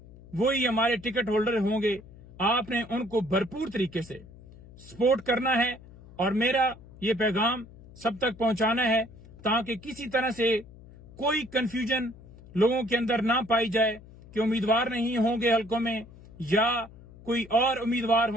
वो ही हमारे टिकट होल्डर होंगे। आपने उनको भरपूर तरीके से सपोर्ट करना है, और मेरा ये पैगाम सब तक पहुंचाना है, ताकि किसी तरह से कोई कंफ्यूजन लोगों के अंदर ना पाई जाए कि उम्मीदवार नहीं होंगे हलकों में, या कोई और उम्मीदवार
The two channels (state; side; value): noise; left; hum, 20 dB below the sound